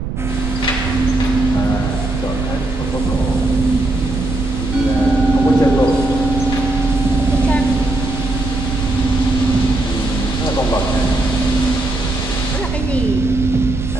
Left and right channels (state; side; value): noise; right; rumble, 6 dB below the sound